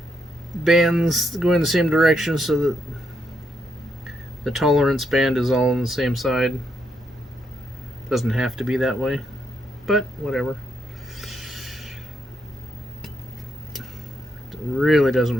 bands going the same direction so that the tolerance band is all on the same side. Doesn't have to be that way, but whatever. Really doesn't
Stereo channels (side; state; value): both; normal; correlation 0.78